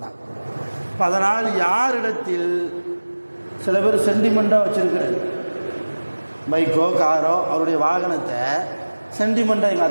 இப்போ அதனால் யாரிடத்தில் சில பேர் சென்டிமெண்ட்டாக வச்சுருக்கிறது, பைக்கோ காரோ, அவருடைய வாகனத்தை சென்டிமெண்ட்டாக எங்கள்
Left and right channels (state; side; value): inverted; both; correlation -1.00